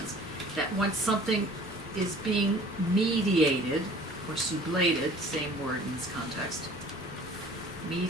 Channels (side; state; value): both; normal; correlation 0.49